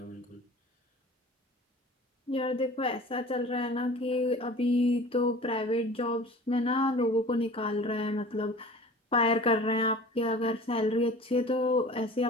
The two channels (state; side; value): normal; both; correlation 0.42